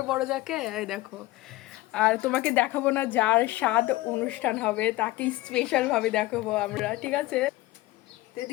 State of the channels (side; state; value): right; quieter; 18.4 dB